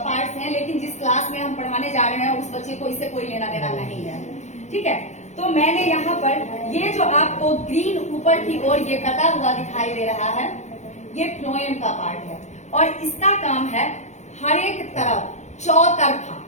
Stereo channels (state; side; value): late; right; 0.33 ms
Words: हैं, लेकिन जिस क्लास में हम पढ़ाने जा रहे हैं उस बच्चे को इससे कोई लेना देना नहीं है। ठीक है, तो मैंने यहाँ पर ये जो आपको ग्रीन ऊपर की ओर ये कटा हुआ दिखाई दे रहा है, ये फ्लोएम का पार्ट है, और इसका काम है हर एक तरफ चौतरफा,